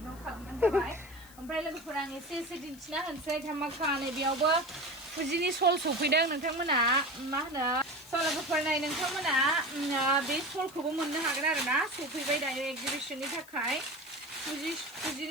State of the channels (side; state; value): left; noise; hiss, 21 dB below the sound